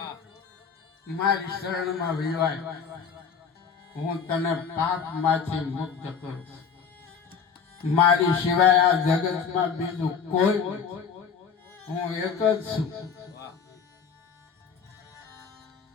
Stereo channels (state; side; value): quieter; right; 6.3 dB